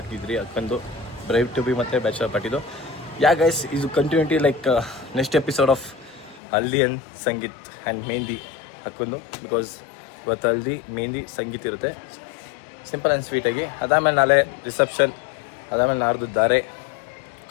ಅದಕ್ಕೊಂದು ಬ್ರೈವ್ ಟು ಬಿ ಮತ್ತು ಬ್ಯಾಚಲರ್ ಪಾರ್ಟಿದು ಗೈಸ್ ಇದು continuity like next episode of haldi and sangeet and mehendi ಹಾಕೊಂಡು. ಬಿಕಾಸ್ ಇವತ್ತು ಹಲ್ದಿ ಮೆಹಂದಿ ಸಂಗೀತ್ ಇರುತ್ತೆ, ಸಿಂಪಲ್ ಆ್ಯಂಡ್ ಸ್ವೀಟಾಗಿ. ಅದಾದಮೇಲೆ ನಾಳೆ ರಿಸೆಪ್ಷನ್, ಅದಾದಮೇಲೆ ನಾಡ್ದು ಧಾರೆ.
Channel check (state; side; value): drops out; right; at 6.4 s